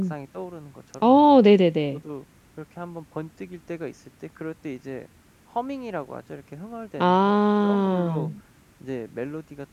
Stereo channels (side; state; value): both; identical; correlation 1.00